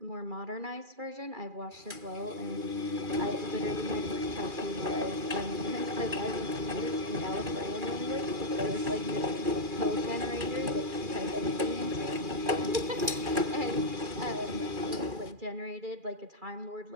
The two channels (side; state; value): left; late; 2.4 ms